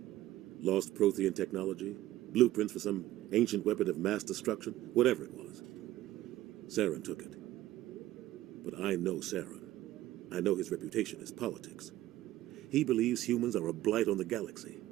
Lost Prothean technology? Blueprints for some ancient weapon of mass destruction? Whatever it was. Saren took it. But I know Saren. I know his reputation is politics. He believes humans are a blight on the galaxy.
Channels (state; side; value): quieter; left; 15.1 dB